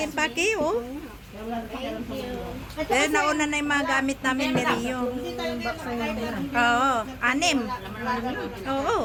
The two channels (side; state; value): both; identical; correlation 1.00